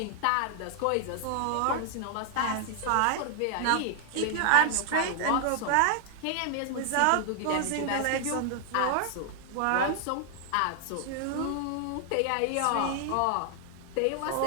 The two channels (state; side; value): different; both; correlation 0.00